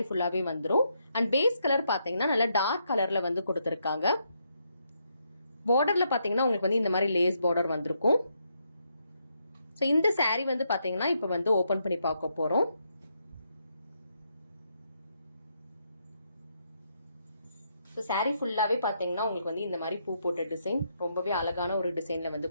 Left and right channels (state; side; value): inverted; both; correlation -0.78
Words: ஃபுல்லாவே வந்துரும். And base color பாத்தீங்கன்னா நல்ல dark colorல வந்து கொடுத்திருக்காங்க. Borderல பாத்தீங்கன்னா உங்களுக்கு வந்து இந்த மாதிரி lace border வந்திருக்கும். So இந்த saree வந்து பாத்தீங்கன்னா இப்ப வந்து ஓபன் பண்ணி பார்க்க போறோம். So saree ஃபுல்லாவே பாத்தீங்கன்னா உங்களுக்கு வந்து இந்த மாதிரி பூ போட்ட டிசைன் ரொம்பவே அழகான ஒரு டிசைன்ல வந்து